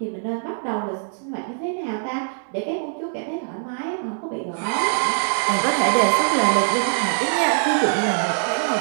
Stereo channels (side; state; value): left; silent; digital silence